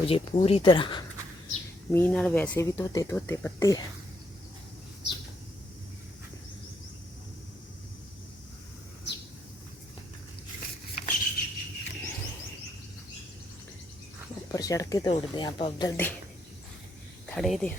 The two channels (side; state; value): both; normal; correlation 0.75